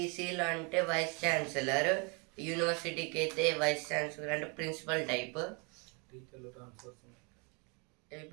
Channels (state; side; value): quieter; left; 32.5 dB